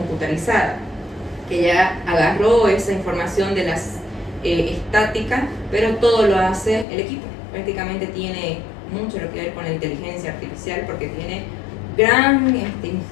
que ya agarró esa información de las estáticas, pero todo lo hace el equipo. Prácticamente tiene mucho lo que ver con la inteligencia artificial porque tiene gran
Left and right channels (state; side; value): drops out; right; at 6.9 s